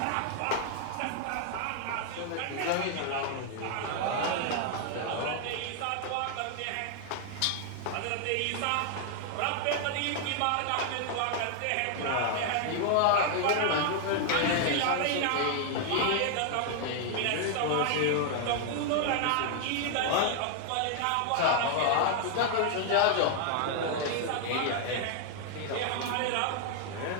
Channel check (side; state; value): both; different; correlation 0.00